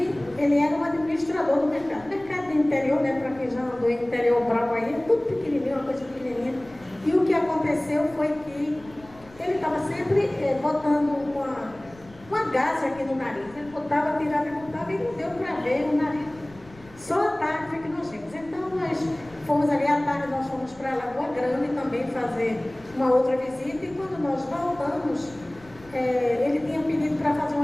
ele era um administrador do mercado. Mercado do interior, né, para quem já andou em interior bravo aí, tudo pequenininho, uma coisa pequenininha. E o que aconteceu foi que ele estava sempre botando uma gase aqui no nariz. Ele botava, tirava e botava, e não deu para ver o nariz. Só à tarde foi que nós vimos. Então nós fomos ali à tarde, nós fomos para Lagoa Grande também fazer uma outra visita, e quando nós voltamos, ele tinha pedido para fazer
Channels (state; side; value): noise; left; rumble, 24 dB below the sound